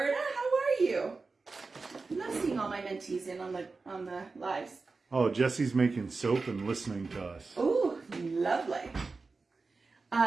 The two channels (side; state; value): left; quieter; 4.0 dB